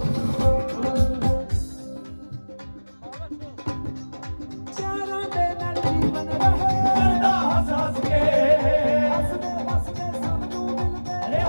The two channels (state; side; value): inverted; both; correlation -1.00